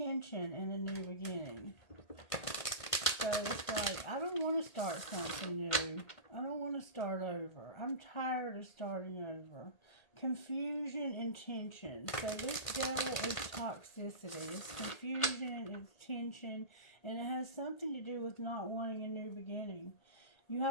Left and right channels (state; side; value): late; right; 1.8 ms